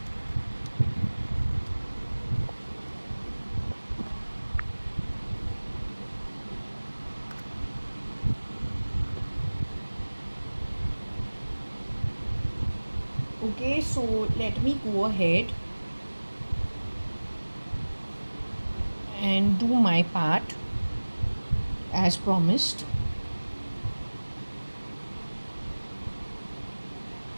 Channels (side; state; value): both; inverted; correlation -1.00